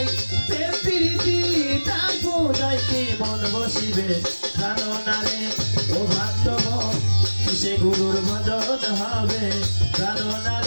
প্রেম প্রীতি, তার পূজায় কি মন বসিবে, জানো না রে ও ভক্তগণ কিসে গুরুর ভজন হবে, জানো না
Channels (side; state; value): both; inverted; correlation -1.00